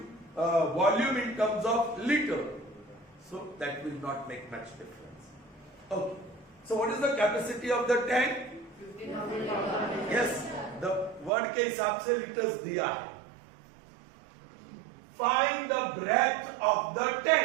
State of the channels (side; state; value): left; drops out; at 11.3 s